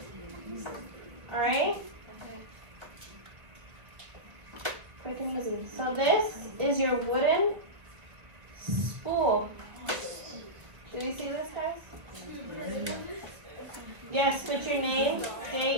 Alright? Quick and easy. So this is your wooden spool. Do you see this, guys? Yes, put your name,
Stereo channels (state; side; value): late; left; 1.3 ms